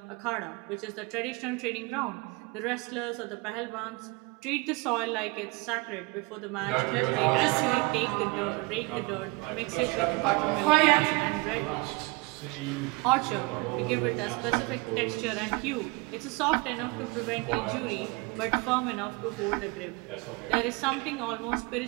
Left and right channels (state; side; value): quieter; left; 25.7 dB